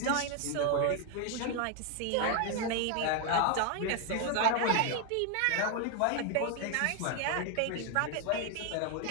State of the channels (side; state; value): both; different; correlation 0.01